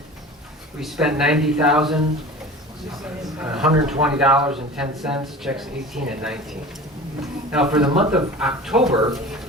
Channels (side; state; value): both; normal; correlation 0.37